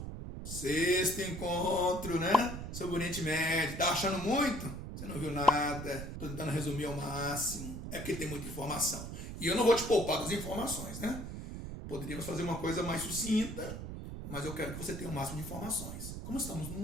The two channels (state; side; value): noise; right; rumble, 7 dB below the sound